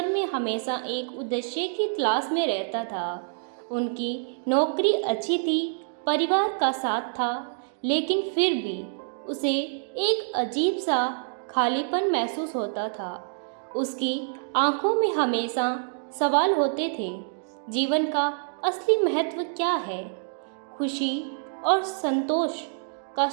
में हमेशा एक उद्देश्य की तलाश में रहता था। उनकी नौकरी अच्छी थी, परिवार का साथ था, लेकिन फिर भी उसे एक अजीब सा खालीपन महसूस होता था। उसकी आंखों में हमेशा सवाल होते थे, जीवन का असली महत्व क्या है, खुशी और संतोष का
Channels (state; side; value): silent; left; digital silence